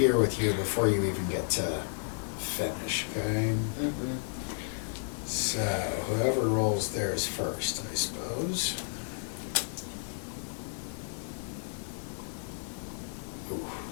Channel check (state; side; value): silent; right; digital silence